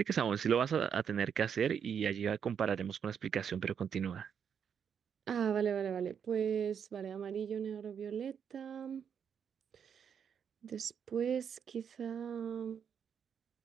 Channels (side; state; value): left; quieter; 7.6 dB